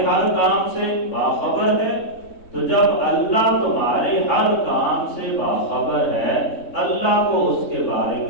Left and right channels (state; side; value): late; right; 3.7 ms